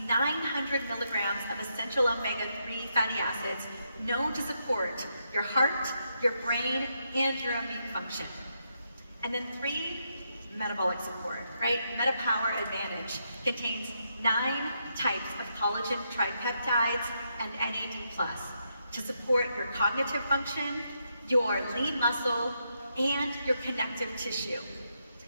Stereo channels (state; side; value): inverted; both; correlation -0.80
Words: 900 milligrams of essential omega-3 fatty acids known to support your heart, your brain, and your immune function. And then 3, metabolic support, right? MetaPower Advantage contains 9 types of collagen tripeptides and NAD+, to support your cognitive function, your lean muscle, and your connective tissue.